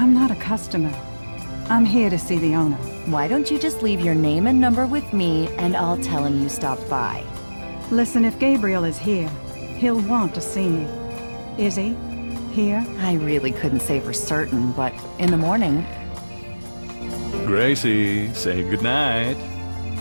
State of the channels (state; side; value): inverted; both; correlation -1.00